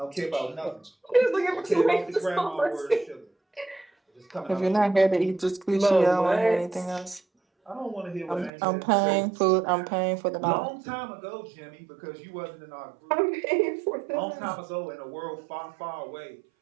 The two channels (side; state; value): left; drops out; at 8.5 s